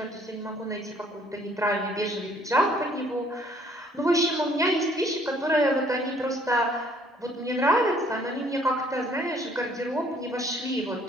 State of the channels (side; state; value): both; normal; correlation 0.61